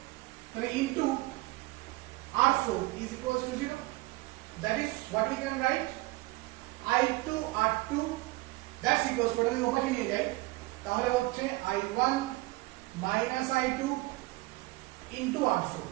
তাহলে into R4 is equals to 0. That is what we can write I2 R2 that's equals to, ওটাকে ওপাশে নিয়ে যাই তাহলে হচ্ছে I1 minus I2 into R4.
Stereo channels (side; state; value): left; quieter; 21.0 dB